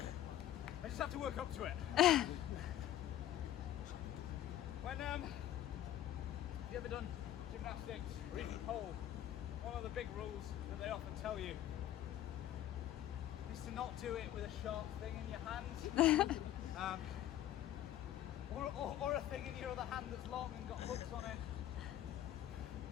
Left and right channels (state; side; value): quieter; right; 12.5 dB